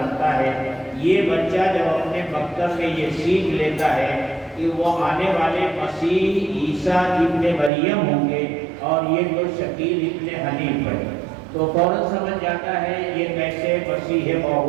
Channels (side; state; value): left; drops out; at 7.7 s